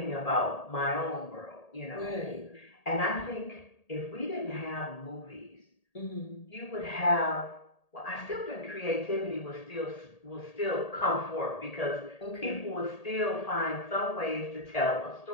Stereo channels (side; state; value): right; late; 1.8 ms